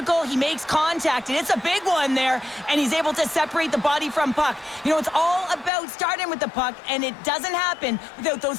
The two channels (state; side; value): drops out; right; at 5.7 s